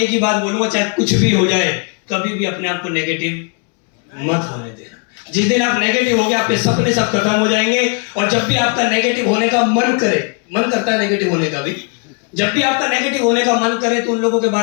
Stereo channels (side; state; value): right; quieter; 38.4 dB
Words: एक ही बात बोलूंगा, चाहे कुछ भी हो जाए, कभी भी अपने आप को नेगेटिव मत होने देना। जिस दिन आप नेगेटिव हो गए, आपके सपने सब खत्म हो जाएंगे। और जब भी आपका नेगेटिव होने का मन करता है नेगेटिव होने का भी, जब भी आपका नेगेटिव होने का मन करे तो उन लोगों के